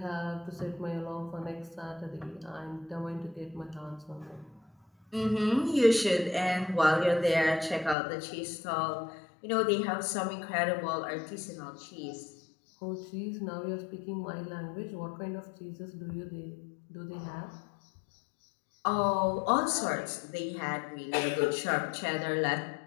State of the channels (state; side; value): drops out; right; at 8.0 s